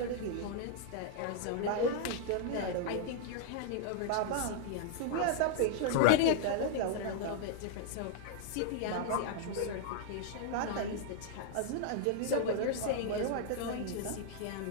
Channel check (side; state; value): both; different; correlation -0.01